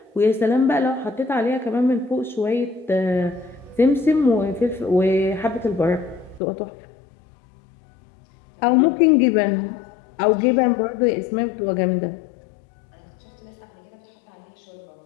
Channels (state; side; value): drops out; right; at 6.4 s